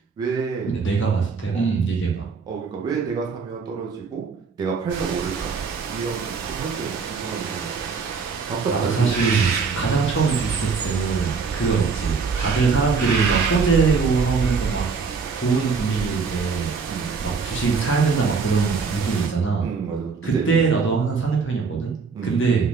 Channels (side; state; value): left; quieter; 5.0 dB